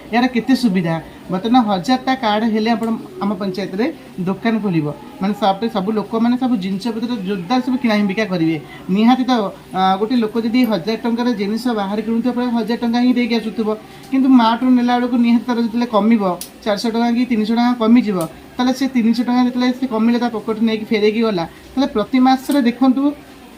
ଏହାର କେତେ ସୁବିଧା। ବର୍ତ୍ତମାନ 1000ଟା କାର୍ଡ଼ ହେଲେ ଆପଣ ଆମ ପଞ୍ଚାୟତରେ ଦୋକାନ ଖୋଲିବ ମାନେ ସପ୍ରେ ସବୁ ଲୋକମାନେ ସବୁ ଜିନିଷପତ୍ର ଜୋରଦାର ସବୁ କିଣା ବିକା କରିବେ। ନିହାତି ତ ଗୋଟେ ଲୋକ ଯଦି 1000 ଟଙ୍କାର ଜିନିଷ ବାହାରେ କିଣୁଥିବ ପ୍ରାୟ 1000 ଟଙ୍କା ହିଁ ଦେଇକି ଆସୁଥିବ, କିନ୍ତୁ ମାର୍ଟରୁ ନେଲା ବେଳକୁ ନିହାତି ତାର ଯେତେବେଳେ କମିବ 400 ଟଙ୍କା କି 300 ଟଙ୍କା କମିଯିବ ତାହେଲେ ସେ 300 ଟଙ୍କା ଯେତେବେଳେ ସେ କମିଲେ ତା ପକେଟ ନେଇକି ଫେରେଇକି ଗଲା ତାହେଲେ ପ୍ରତି ମାସରେ ଦେଖନ୍ତୁ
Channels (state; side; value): identical; both; correlation 1.00